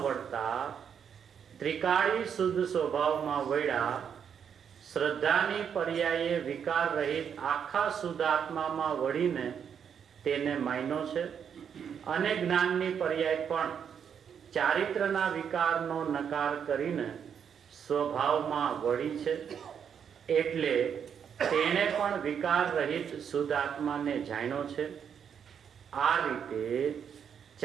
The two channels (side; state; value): left; quieter; 7.7 dB